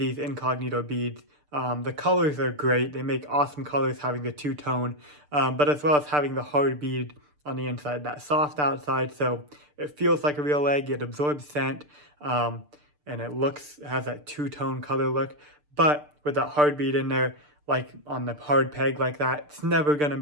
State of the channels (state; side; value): late; left; 6.8 ms